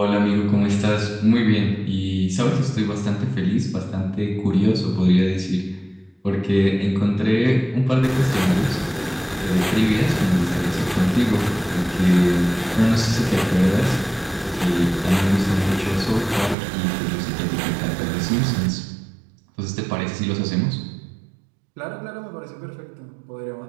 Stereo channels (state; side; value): drops out; left; at 16.6 s